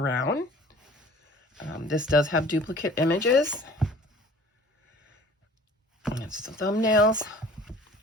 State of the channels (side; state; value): both; normal; correlation 0.48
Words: This does have duplicate images. And it's the thumbnails.